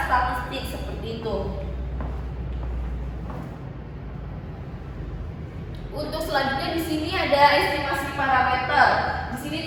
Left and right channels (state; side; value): identical; both; correlation 1.00